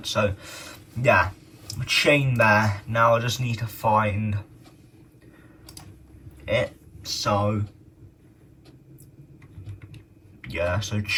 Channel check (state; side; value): identical; both; correlation 1.00